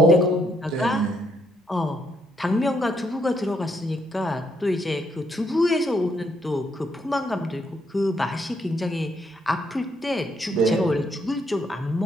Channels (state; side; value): normal; both; correlation 0.73